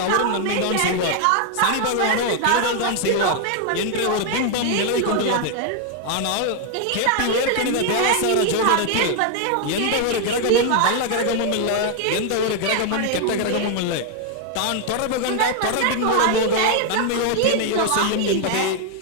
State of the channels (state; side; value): different; both; correlation 0.00